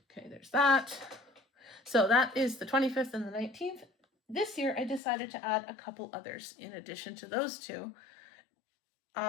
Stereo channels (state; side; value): drops out; right; at 5.0 s